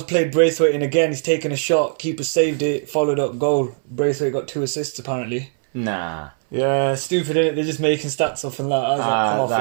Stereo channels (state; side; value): silent; left; 62 dB below the other